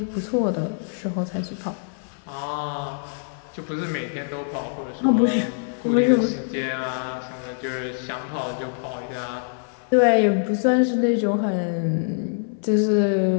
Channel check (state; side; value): silent; right; 62 dB below the other